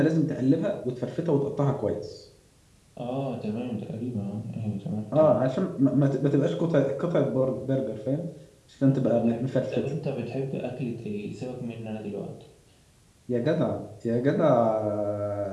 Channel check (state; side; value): identical; both; correlation 1.00